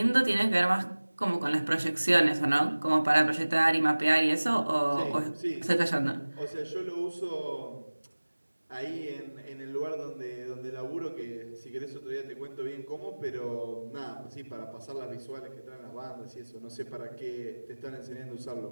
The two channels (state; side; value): inverted; both; correlation -1.00